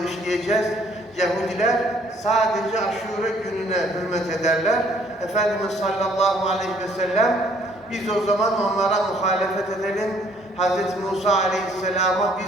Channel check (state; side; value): normal; both; correlation 0.62